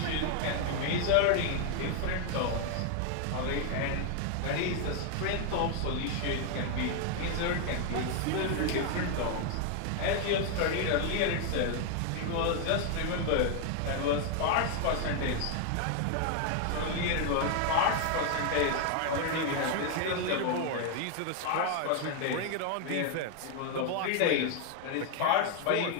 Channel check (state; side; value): different; both; correlation 0.00